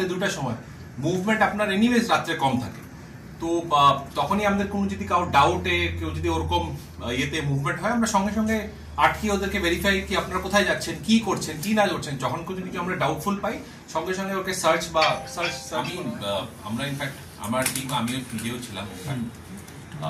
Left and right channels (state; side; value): identical; both; correlation 1.00